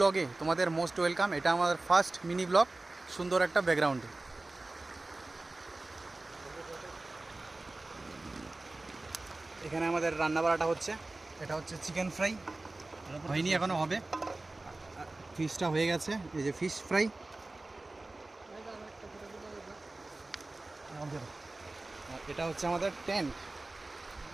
তোমাদের মোস্ট ওয়েলকাম। এটা আমাদের ফার্স্ট মিনি ব্লগ, সুন্দর একটা ব্যাকগ্রাউন্ডে। এখানে আমাদের রান্না বাড়াটা হচ্ছে, এটা হচ্ছে চিকেন ফ্রাই, হয়নি এখনও, হবে। ফিশটা হয়ে গেছে, এই যে ফিশ ফ্রাই। এটা হচ্ছে আমাদের টেন্ট।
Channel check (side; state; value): left; quieter; 3.0 dB